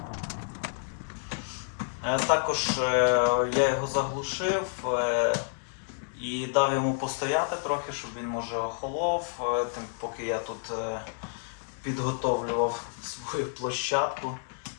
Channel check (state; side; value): silent; right; digital silence